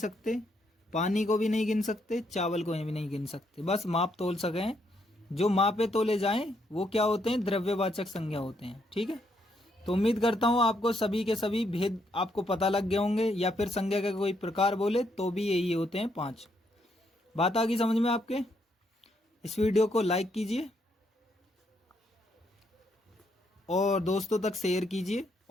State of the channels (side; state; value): both; normal; correlation 0.75